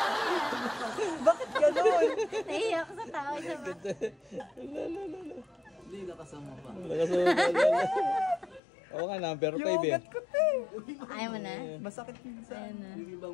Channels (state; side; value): drops out; right; at 8.6 s